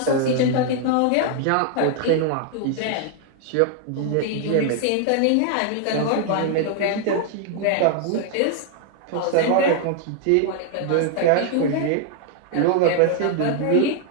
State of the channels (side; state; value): both; different; correlation 0.00